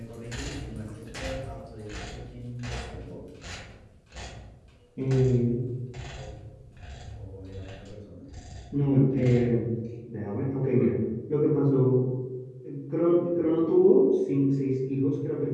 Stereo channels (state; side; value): identical; both; correlation 1.00